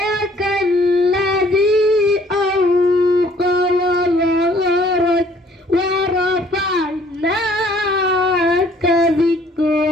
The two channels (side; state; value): both; normal; correlation 0.59